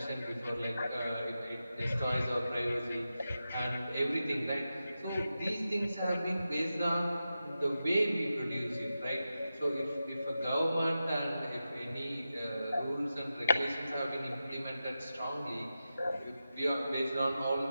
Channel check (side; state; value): both; inverted; correlation -0.91